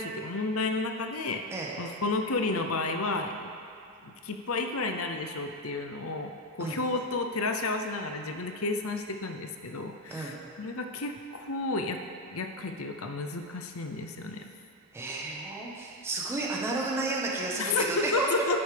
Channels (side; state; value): both; normal; correlation 0.08